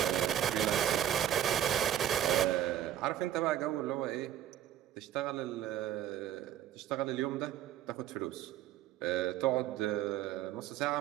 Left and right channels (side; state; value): left; quieter; 11.3 dB